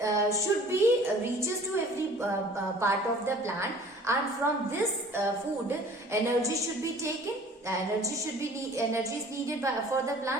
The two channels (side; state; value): both; normal; correlation 0.49